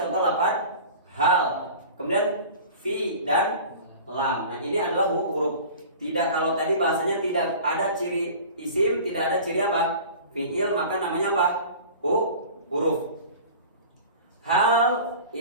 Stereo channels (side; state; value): both; inverted; correlation -0.40